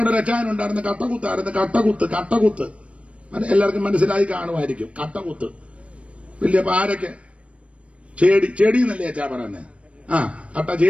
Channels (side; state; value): left; late; 0.062 ms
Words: ഒരു അച്ചായനുണ്ടായിരുന്ന കട്ടകുത്ത് എല്ലാവർക്കും മനസ്സിലായി കാണുമായിരിക്കും. കട്ടകുത്ത് വലിയ പാരയ്ക്ക് ചേടി എന്നല്ലേ അച്ചാ പറയുന്നത്.